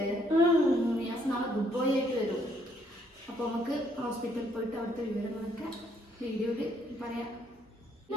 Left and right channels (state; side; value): normal; both; correlation 0.69